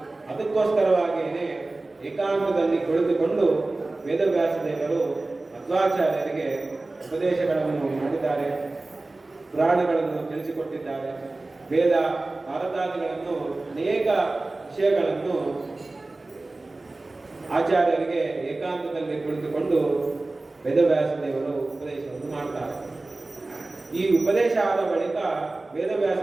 ಅದಕ್ಕೋಸ್ಕರವಾಗಿಯೇ ಏಕಾಂತದಲ್ಲಿ ಕುಳಿತುಕೊಂಡು ವೇದವ್ಯಾಸ ದೇವರು ಮಧ್ವಾಚಾರ್ಯರಿಗೆ ಉಪದೇಶಗಳನ್ನು ಮಾಡಿದ್ದಾರೆ, ಪುರಾಣಗಳನ್ನು ತಿಳಿಸಿಕೊಟ್ಟಿದ್ದಾರೆ. ವೇದ ಭಾರತಾದಿಗಳನ್ನು ಅನೇಕ ವಿಷಯಗಳನ್ನು ಆಚಾರ್ಯರಿಗೆ ಏಕಾಂತದಲ್ಲಿ ಕುಳಿತುಕೊಂಡು ವೇದವ್ಯಾಸ ದೇವರು ಉಪದೇಶವನ್ನು ಮಾಡ್ತಾರೆ. ಈ ಉಪದೇಶ ಆದ ಬಳಿಕ ವೇದವ್ಯಾಸ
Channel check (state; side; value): quieter; left; 3.1 dB